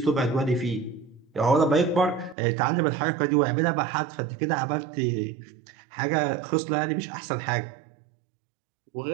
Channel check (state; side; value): drops out; left; at 2.4 s